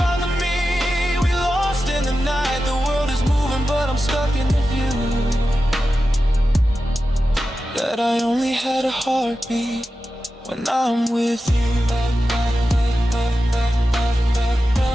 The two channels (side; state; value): both; normal; correlation 0.92